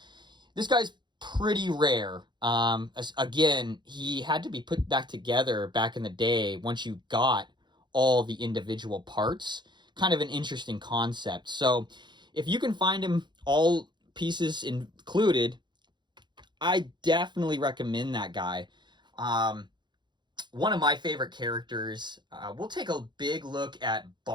This guy's pretty rare. Again, he had to be put back together back in the day once you got all the individual parts. Kind of an interesting concept. So if you can find him all pieces included, I definitely recommend that guy. One of my favorite characters. We'll take a big look at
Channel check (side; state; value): left; late; 0.22 ms